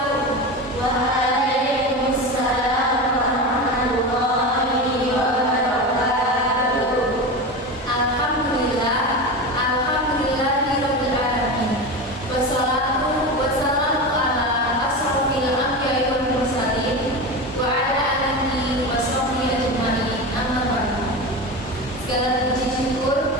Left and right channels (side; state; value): both; normal; correlation 0.24